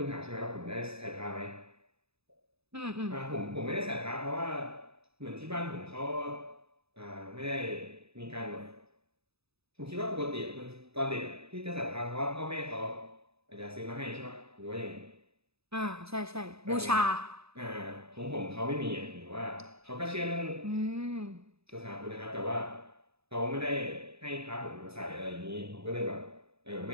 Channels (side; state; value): left; late; 0.78 ms